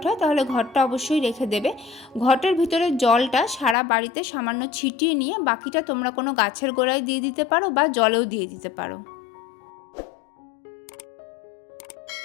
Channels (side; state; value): right; drops out; at 3.8 s